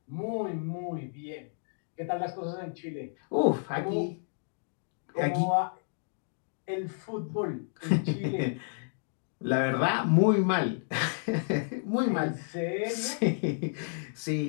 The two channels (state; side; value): silent; right; digital silence